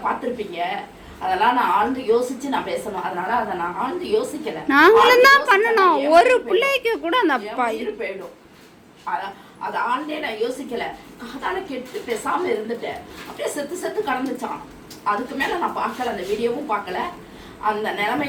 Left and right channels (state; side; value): identical; both; correlation 1.00